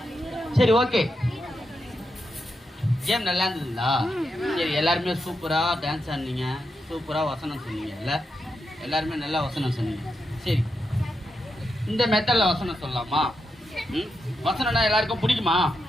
சரி, ஓகே. கேம் நல்லா இருந்ததுங்களா? சரி, எல்லாருமே சூப்பரா டான்ஸ் ஆடினீங்க, சூப்பரா வசனம் சொன்னீங்க. இல்ல எல்லாருமே நல்லா வசனம் சொன்னீங்க. சரி, இந்த மெத்தட்ல வசனம் சொல்லலாமா? வசனம்னா எல்லாருக்கும் பிடிக்குமா?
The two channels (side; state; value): both; normal; correlation 0.85